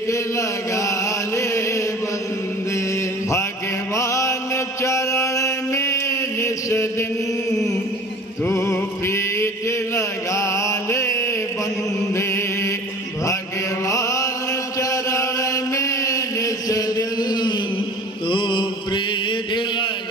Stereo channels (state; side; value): normal; both; correlation 0.42